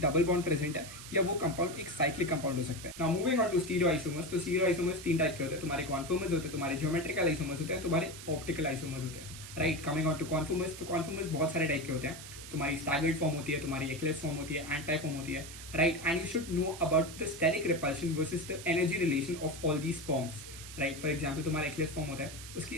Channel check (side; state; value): right; noise; hiss, 13 dB below the sound